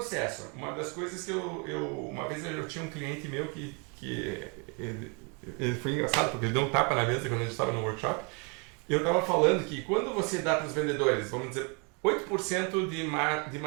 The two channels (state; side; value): quieter; left; 34.3 dB